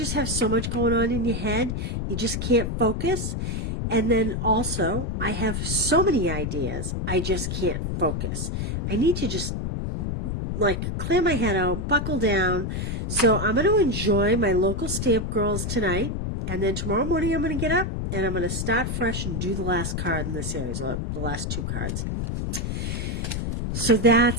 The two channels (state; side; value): noise; left; rumble, 2 dB below the sound